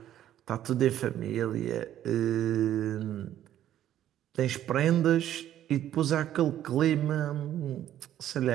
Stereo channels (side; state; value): left; quieter; 11.8 dB